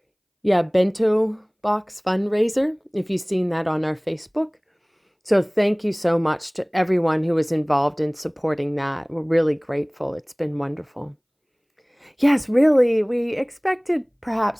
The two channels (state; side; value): identical; both; correlation 1.00